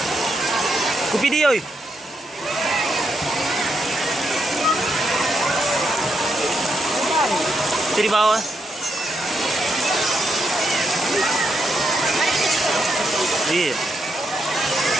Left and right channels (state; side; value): normal; both; correlation 0.80